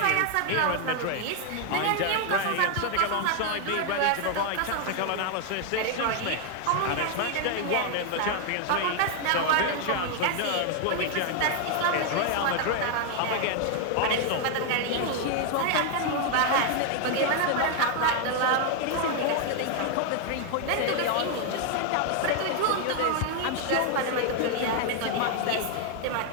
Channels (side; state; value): both; different; correlation 0.00